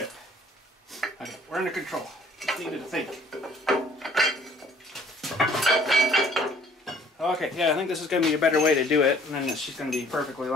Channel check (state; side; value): normal; both; correlation 0.57